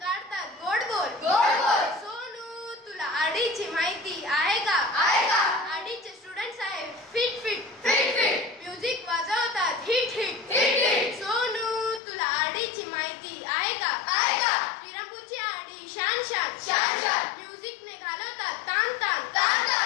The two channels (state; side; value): drops out; right; at 12.0 s